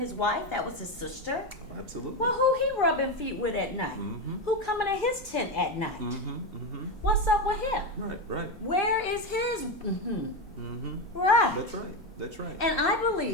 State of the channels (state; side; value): normal; both; correlation 0.13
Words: wife, that was his sister? Absolutely. Well, who he rubbing feet with at night? Who coming to his tent at night? What's up with him? Right. Where is his? Right. That's right. And I